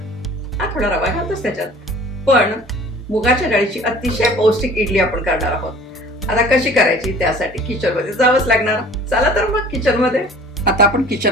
हा थोडा रवा घालतोच त्याच्यात, पण मुगाच्या डाळीची अतिशय पौष्टिक इडली आपण करणार आहोत. आता कशी करायची त्यासाठी किचनमध्ये जावंच लागणार. चला तर मग किचनमध्ये. आता आपण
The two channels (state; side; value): normal; both; correlation 0.48